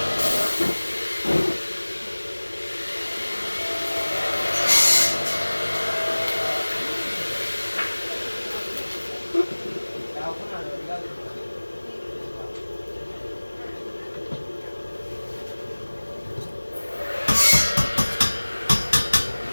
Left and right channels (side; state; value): both; inverted; correlation -1.00